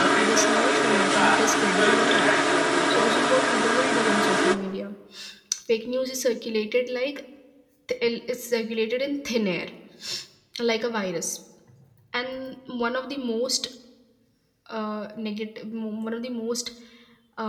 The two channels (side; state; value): both; identical; correlation 1.00